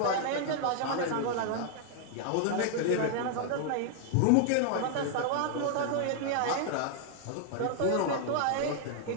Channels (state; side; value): different; both; correlation 0.00